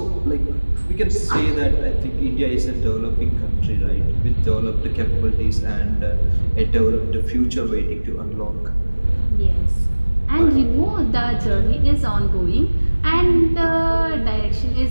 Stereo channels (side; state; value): both; inverted; correlation -1.00